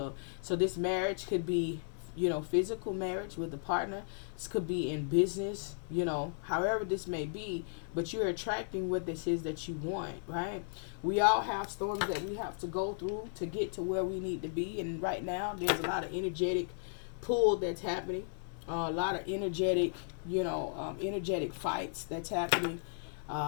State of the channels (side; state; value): right; silent; 54 dB below the other